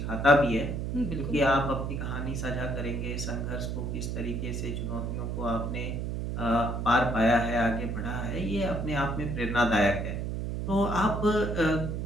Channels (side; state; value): right; noise; hum, 3 dB below the sound